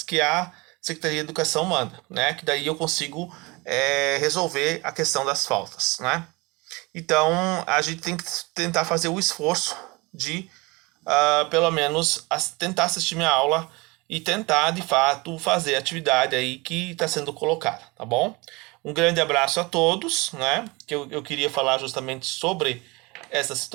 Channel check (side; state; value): left; quieter; 25.2 dB